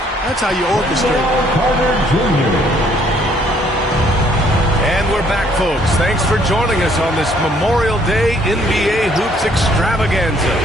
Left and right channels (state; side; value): normal; both; correlation 0.64